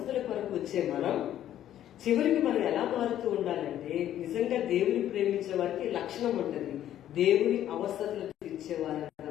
కొరకు వచ్చే మనం చివరికి మనం ఎలా మారుతూ ఉండాలంటే, నిజంగా దేవుని ప్రేమించే వారికి లక్షణం ఉంటుంది, దేవుని అవసరతలు తీర్చేవారంగా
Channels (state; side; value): quieter; right; 11.7 dB